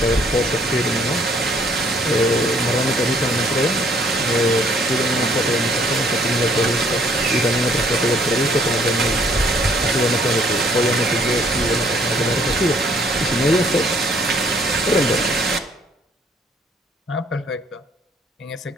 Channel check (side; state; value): both; normal; correlation 0.62